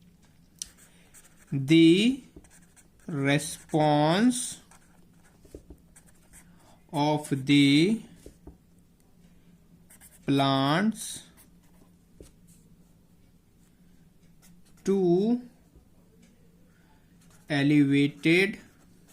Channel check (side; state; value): both; identical; correlation 1.00